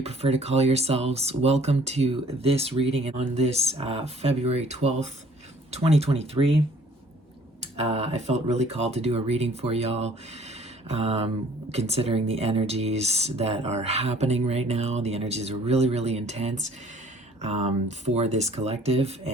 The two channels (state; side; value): normal; both; correlation 0.57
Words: prefer to call yourselves. Welcome to this reading on this February 12th, 2023. I felt really called to do a reading for y'all, considering the energies that are happening right now. The energies are really, really intense for this collective,